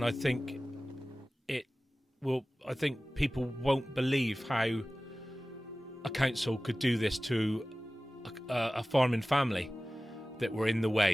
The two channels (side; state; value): both; normal; correlation 0.97